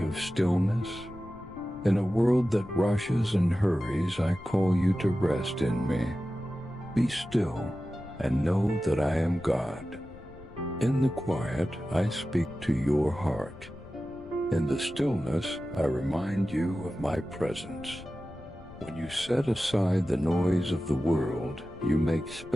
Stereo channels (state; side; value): noise; left; rumble, 18 dB below the sound